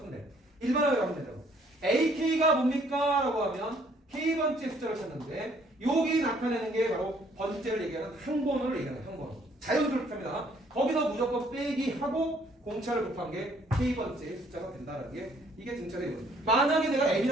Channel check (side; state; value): both; normal; correlation 0.63